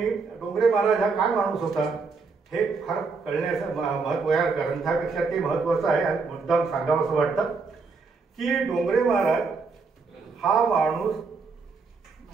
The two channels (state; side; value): quieter; left; 4.5 dB